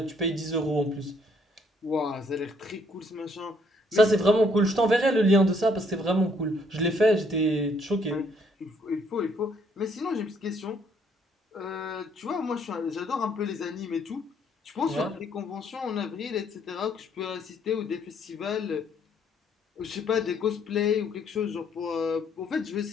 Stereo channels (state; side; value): normal; both; correlation 0.67